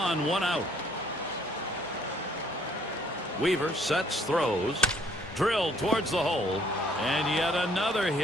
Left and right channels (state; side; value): normal; both; correlation 0.63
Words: one out. Weaver sets, throws, drilled towards the hole, and yet another